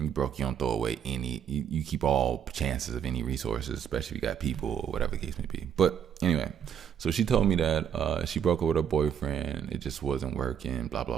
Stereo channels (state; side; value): quieter; left; 8.5 dB